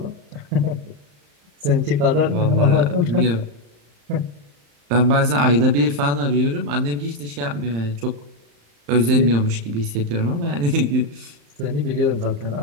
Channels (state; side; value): late; left; 35 ms